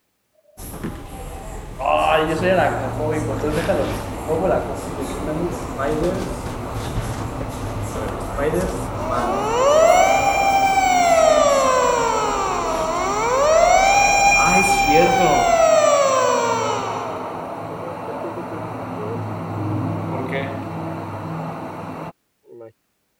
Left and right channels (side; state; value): both; identical; correlation 1.00